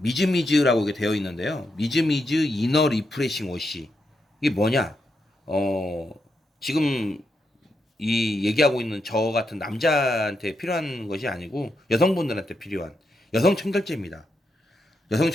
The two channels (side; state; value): both; normal; correlation 0.83